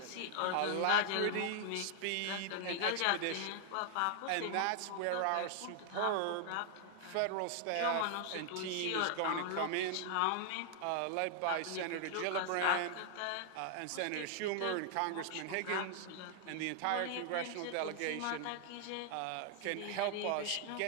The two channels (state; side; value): different; both; correlation 0.00